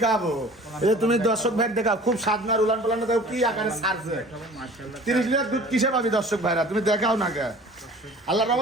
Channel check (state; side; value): normal; both; correlation 0.45